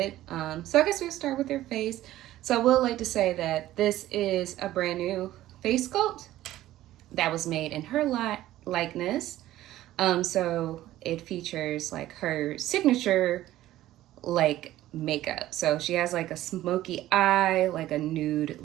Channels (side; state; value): left; quieter; 14.6 dB